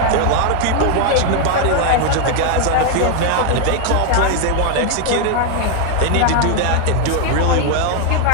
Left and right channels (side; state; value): both; different; correlation 0.00